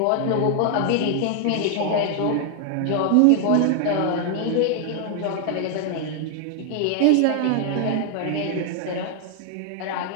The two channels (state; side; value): different; both; correlation 0.00